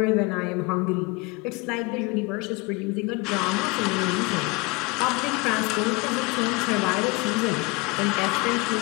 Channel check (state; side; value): quieter; right; 26.7 dB